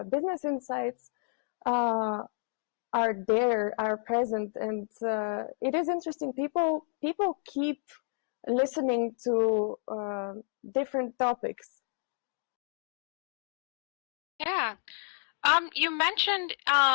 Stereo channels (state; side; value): silent; right; 57 dB below the other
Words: business insights are present, and it is interesting. People keep listening to different topics. Yeah. You mentioned